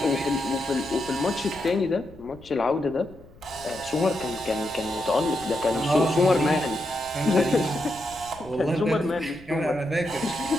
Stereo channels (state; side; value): noise; left; rumble, 22 dB below the sound